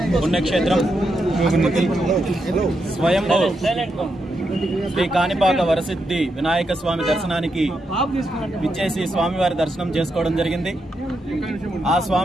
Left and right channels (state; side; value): normal; both; correlation 0.83